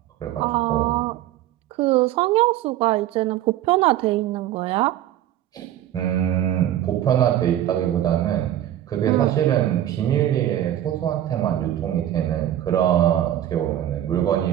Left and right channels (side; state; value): left; quieter; 12.3 dB